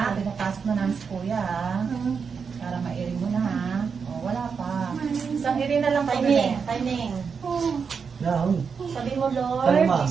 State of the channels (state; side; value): quieter; left; 5.9 dB